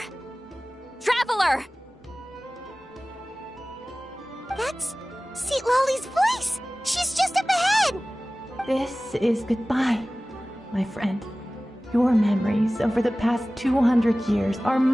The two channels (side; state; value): both; normal; correlation 0.97